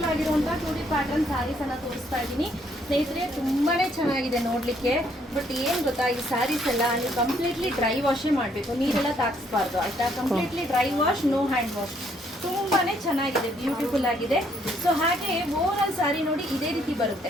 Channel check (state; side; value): normal; both; correlation 0.69